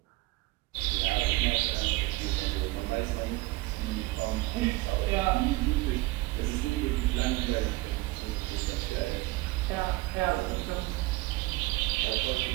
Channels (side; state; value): left; quieter; 20.8 dB